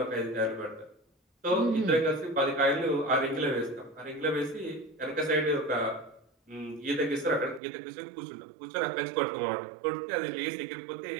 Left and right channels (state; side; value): drops out; left; at 7.6 s